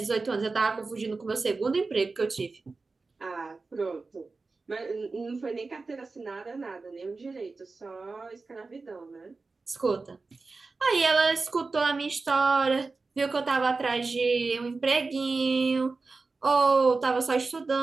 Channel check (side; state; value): left; quieter; 3.9 dB